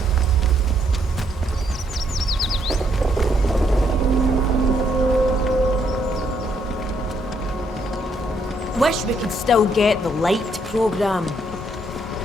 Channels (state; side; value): normal; both; correlation 0.72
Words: Wish we could still get the light program.